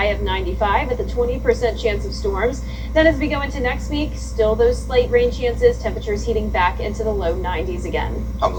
of 95 with a 20% chance of storms. Then as we go into next week, still those slight rain chances, temperatures heating back into the low 90s again. I'm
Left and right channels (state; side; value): identical; both; correlation 1.00